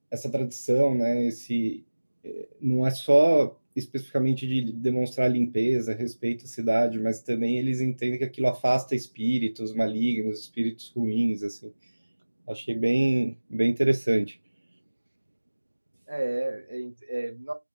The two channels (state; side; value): inverted; both; correlation -1.00